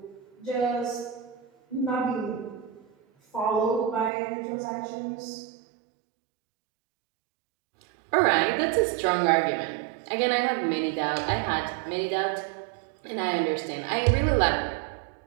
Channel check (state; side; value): drops out; left; at 4.1 s